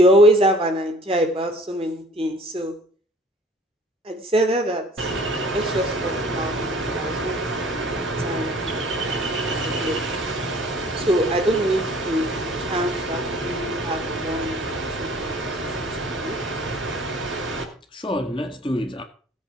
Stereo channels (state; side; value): normal; both; correlation 0.52